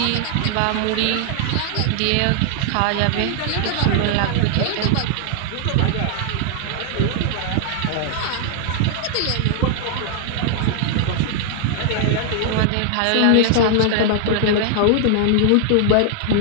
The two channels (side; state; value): both; different; correlation 0.00